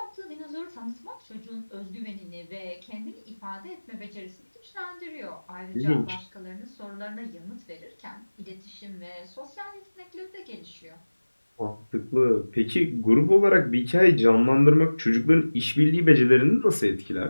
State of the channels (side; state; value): both; inverted; correlation -1.00